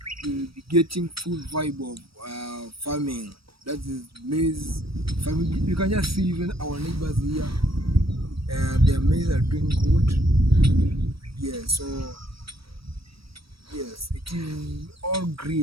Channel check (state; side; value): late; left; 0.75 ms